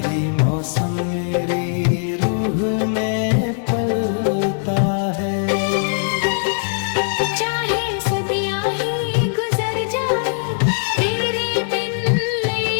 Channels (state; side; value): silent; right; 66 dB below the other